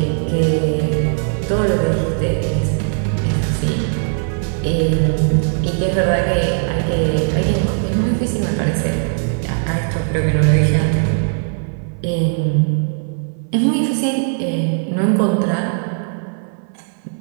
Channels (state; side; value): silent; left; 60 dB below the other